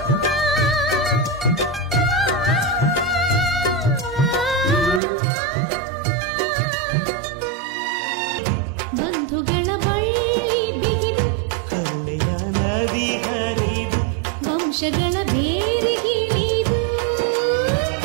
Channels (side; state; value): left; drops out; at 5.0 s